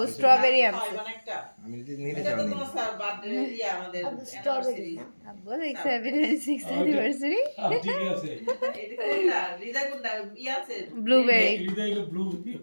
স্ট্রবেরি আনছে। আমি যদি নিতে এটা তো চাই তোমার স্যার বার্থডে দিয়ে আমাদের স্ট্রবেরি না। আব্বু 26th অ্যানিভার্সারি ঠিক আছে। এটা কোনটা? হৃদয় কোনটা? ই আছে? ব্লুবেরি। হৃদয় ব্লু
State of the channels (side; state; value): both; inverted; correlation -1.00